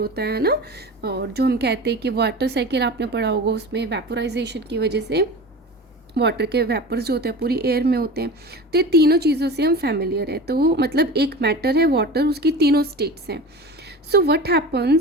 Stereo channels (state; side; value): normal; both; correlation 0.33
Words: है ना, और जो हम कहते हैं कि वाटर साइकिल आपने पढ़ा होगा, उसमें वेपोराइजेशन की वजह से वाटर के वेपर्स जो होते हैं पूरी एयर में होते हैं. तो ये तीनों चीज़ों से हम फैमिलियर है. तो मतलब एक मैटर है वाटर, उसकी तीनों स्टेट्स हैं. So what